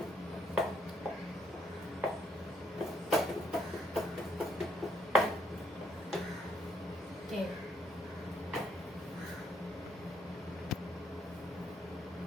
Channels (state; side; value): normal; both; correlation 0.71